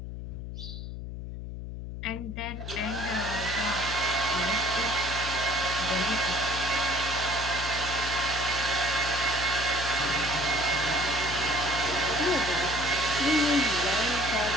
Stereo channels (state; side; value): noise; left; hum, 8 dB below the sound